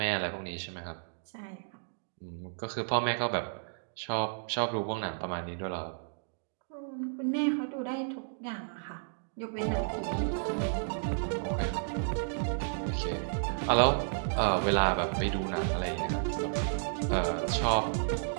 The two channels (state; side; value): silent; left; digital silence